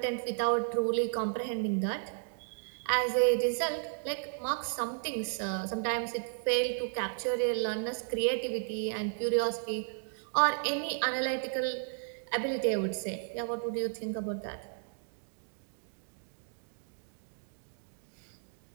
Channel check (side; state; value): left; silent; digital silence